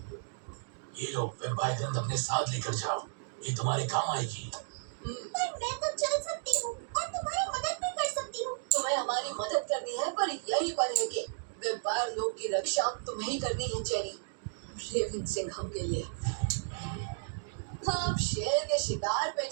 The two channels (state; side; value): silent; left; digital silence